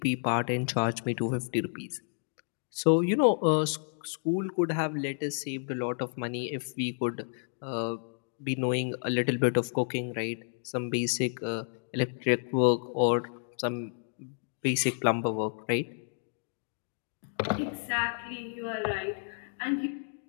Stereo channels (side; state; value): right; silent; 57 dB below the other